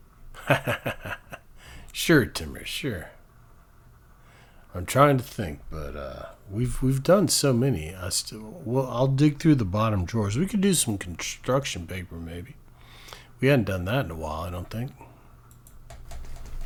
Sure, Timmer, sure. I'm trying to think, but we've done so many. I'll dig through the bottom drawers. We could do some construction paper, maybe. We hadn't done that in a while, I don't think.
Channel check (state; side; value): identical; both; correlation 1.00